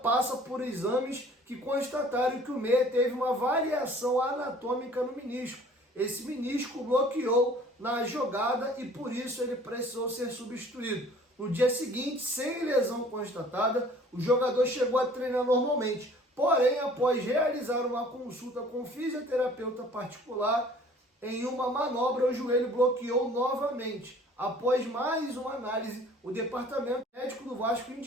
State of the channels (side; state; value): both; normal; correlation 0.51